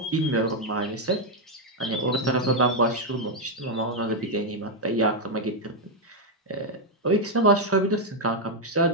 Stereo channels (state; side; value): normal; both; correlation 0.00